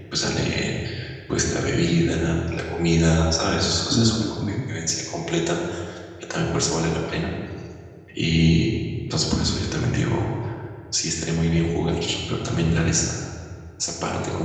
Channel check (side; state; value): both; identical; correlation 1.00